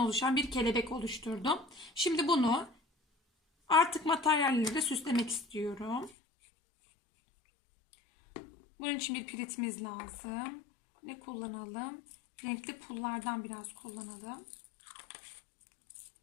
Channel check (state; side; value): drops out; right; at 6.1 s